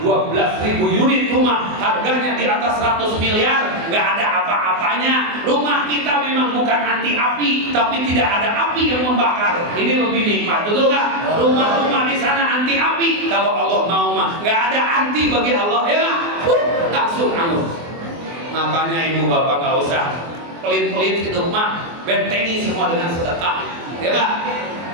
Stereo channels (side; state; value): left; late; 24 ms